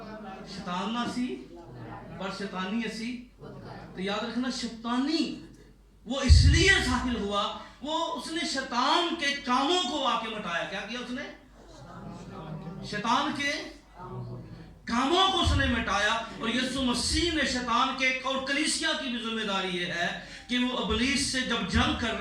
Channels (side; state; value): both; identical; correlation 1.00